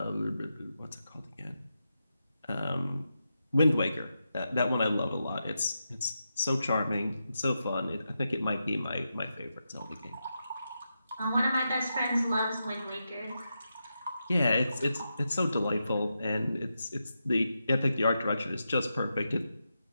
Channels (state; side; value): inverted; both; correlation -0.87